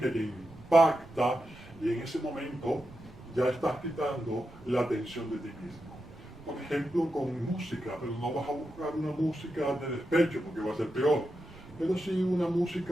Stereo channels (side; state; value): right; noise; rumble, 20 dB below the sound